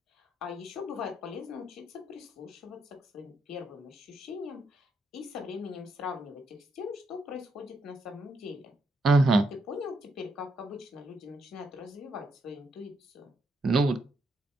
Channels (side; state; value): both; normal; correlation 0.77